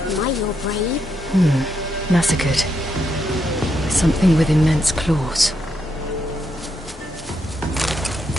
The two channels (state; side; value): normal; both; correlation 0.80